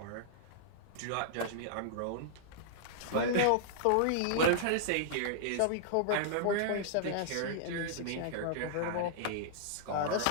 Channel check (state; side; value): different; both; correlation -0.01